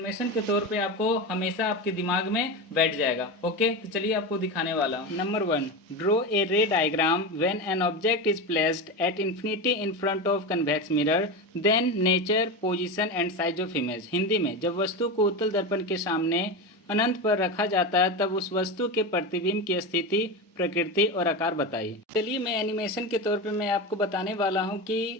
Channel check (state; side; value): normal; both; correlation 0.20